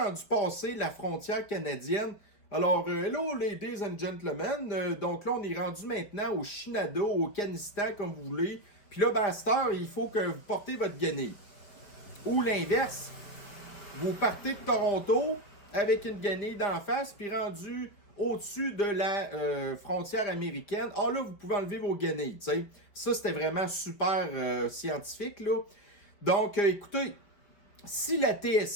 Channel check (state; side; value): late; right; 5.0 ms